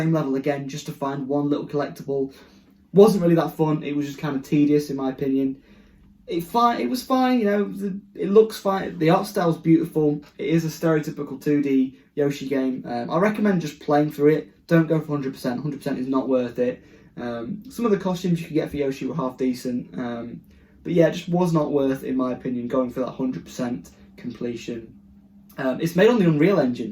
level again just to find one little collectible. Wasn't really that fun. It was just kind of tedious, in my opinion. It was fine, you know. It looks fine. The art style's beautiful. It is a stereotypical 2D Yoshi game. I recommend just playing through it. Don't go for 100%. 100% is not worth it. Some of the costumes you could get for Yoshi were half decent. But yeah, it just was not worth, in my opinion, going for that 100% completion. It's made on the Unreal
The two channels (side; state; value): both; identical; correlation 1.00